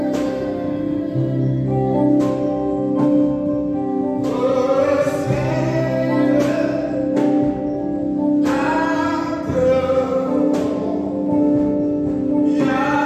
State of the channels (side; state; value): both; identical; correlation 1.00